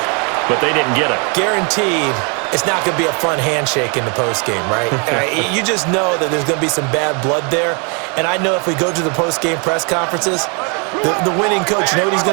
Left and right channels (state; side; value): quieter; left; 35.2 dB